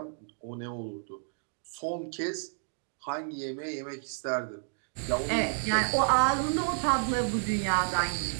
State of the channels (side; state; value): left; silent; digital silence